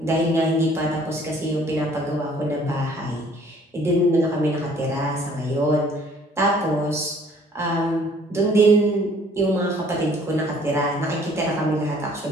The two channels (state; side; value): normal; both; correlation 0.57